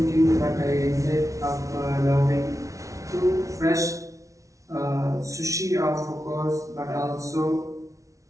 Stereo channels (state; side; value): late; left; 0.16 ms